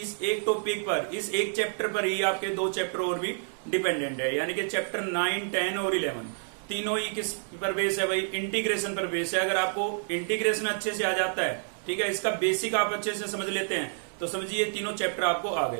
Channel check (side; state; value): left; silent; digital silence